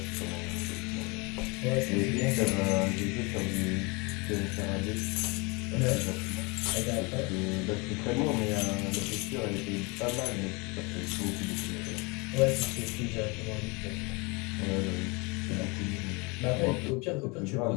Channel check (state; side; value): quieter; right; 28.6 dB